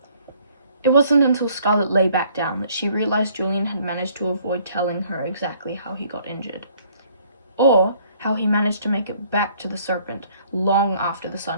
It wasn't until Scarlet lay back down that she realized Julian had managed to avoid telling her exactly how he got injured, or how he managed to make it back to the Serpent long after the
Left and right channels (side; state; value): both; inverted; correlation -0.61